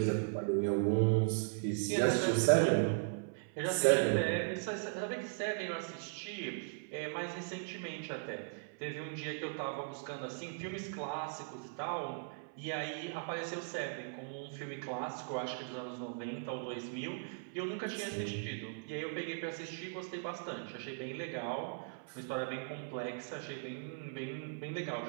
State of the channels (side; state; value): left; silent; 52 dB below the other